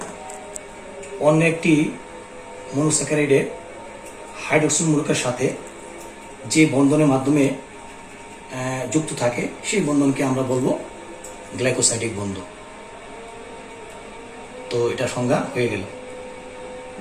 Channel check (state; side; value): identical; both; correlation 1.00